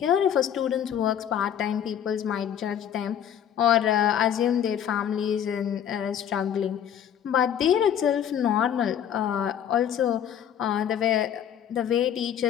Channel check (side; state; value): right; quieter; 9.3 dB